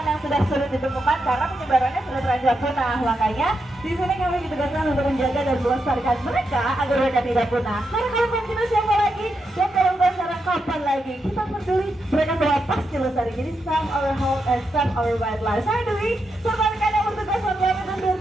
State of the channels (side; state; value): both; normal; correlation 0.84